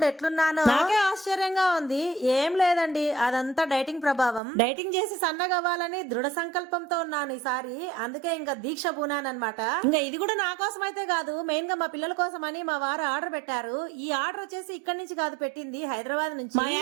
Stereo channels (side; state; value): left; drops out; at 4.4 s